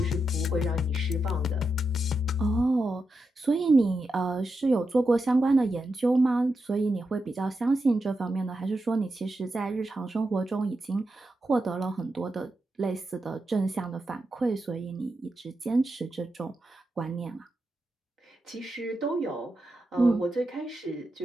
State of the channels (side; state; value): both; normal; correlation 0.87